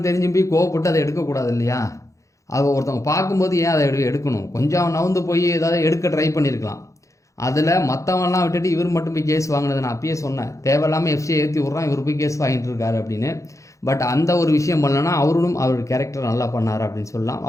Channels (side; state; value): right; late; 0.15 ms